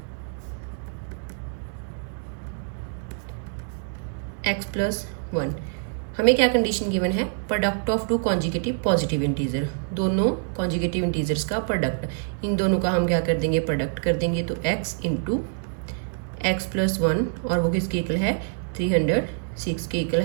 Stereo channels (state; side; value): silent; left; 61 dB below the other